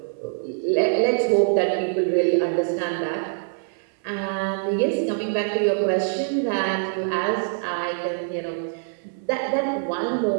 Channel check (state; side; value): silent; left; 57 dB below the other